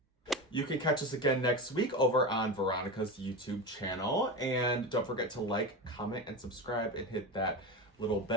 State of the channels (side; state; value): both; normal; correlation 0.22